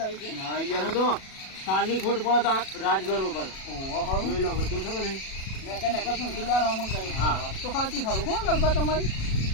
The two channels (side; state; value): right; late; 37 ms